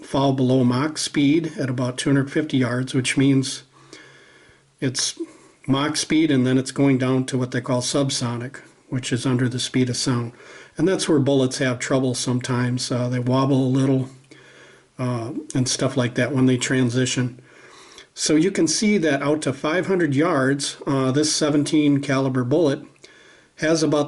below Mach speed at about 250 yards, which means it's Mach speed, and then it's going down to what they call subsonic, which is under the speed of sound. And that's where bullets have trouble sometimes. They wobble a little and stuff like that when they transition. So you can see that out to 500 yards, this 17 caliber bullet has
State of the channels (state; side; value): identical; both; correlation 1.00